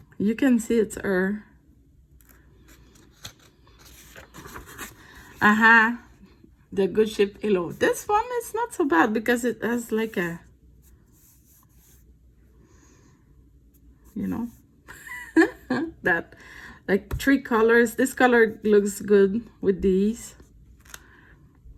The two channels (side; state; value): both; identical; correlation 1.00